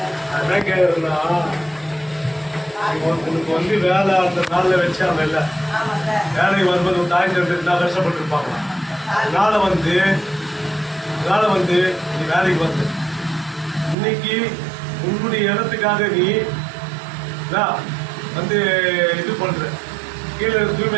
என்ன கேக்குறா உனக்கு வந்து வேலை அந்த நாளில் வச்சாங்க இல்லை வேலைக்கு வரும்போது ஒரு தாய் தந்தை இருந்தால் கஷ்டப்பட்டு இருப்பாங்க அதனால வந்து நீ வேலைக்கு வந்து இன்னைக்கு உன்னுடைய இடத்துக்காக நீ வந்து இது பண்ற கீழே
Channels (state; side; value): drops out; left; at 14.0 s